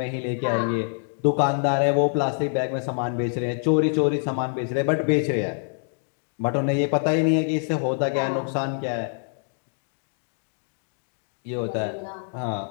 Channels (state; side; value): silent; right; digital silence